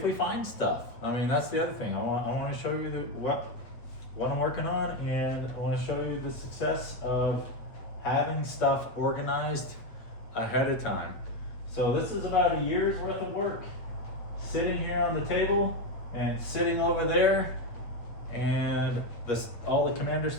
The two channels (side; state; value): right; late; 8.2 ms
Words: we find stuff. I mean, that's the other thing. I want to show you what I'm working on, and I want to show you the success of having stuff organized ahead of time. So this is about a year's worth of work sitting here on the table and sitting over there, and all the commander